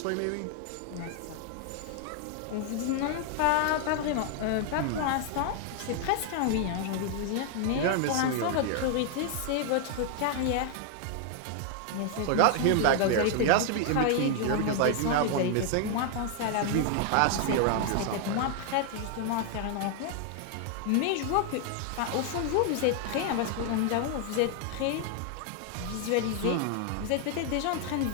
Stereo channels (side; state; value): both; different; correlation 0.00